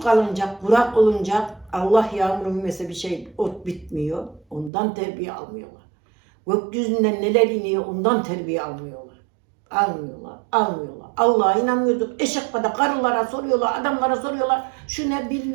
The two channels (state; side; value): drops out; left; at 4.7 s